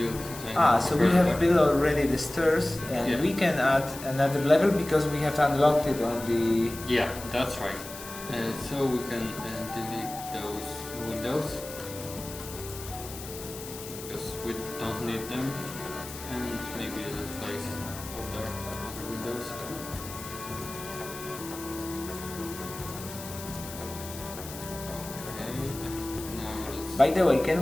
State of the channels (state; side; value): noise; left; hiss, 12 dB below the sound